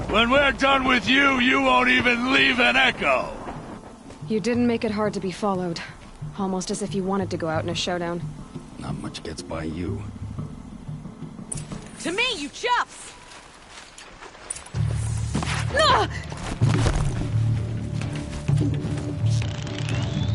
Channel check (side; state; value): both; identical; correlation 1.00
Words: When we're done with you, you won't even leave an echo! You didn't make it hard to be followed. Almost as if you wanted to go out in a showdown. Not much gets by you. To me, you chuffs!